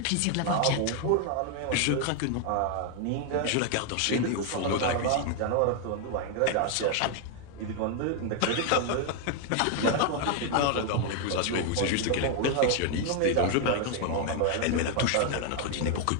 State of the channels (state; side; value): different; both; correlation 0.00